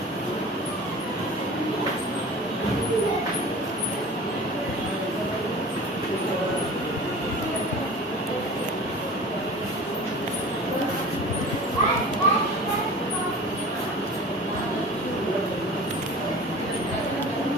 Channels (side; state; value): both; normal; correlation 0.38